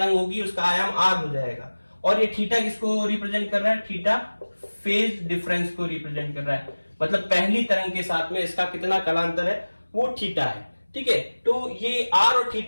होगी उसका आयाम आर हो जाएगा। और ये थीटा किसको रिप्रेजेंट कर रहा है, थीटा फेज डिफरेंस को रिप्रेजेंट कर रहा है, मतलब पहली तरंग के साथ में इसका कितना कालांतर है वो थीटा है, ठीक है। तो ये आर और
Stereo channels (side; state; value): both; inverted; correlation -1.00